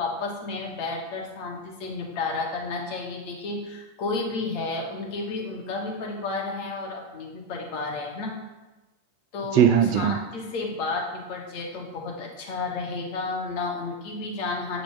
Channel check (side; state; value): right; late; 8.8 ms